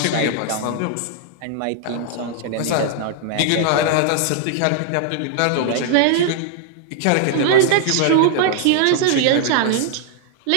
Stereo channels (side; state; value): both; different; correlation 0.00